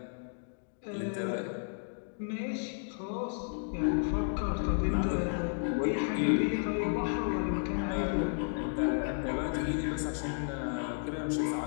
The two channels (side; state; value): right; silent; digital silence